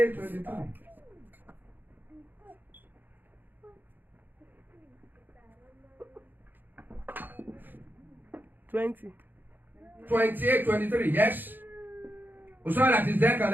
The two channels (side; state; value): left; late; 0.090 ms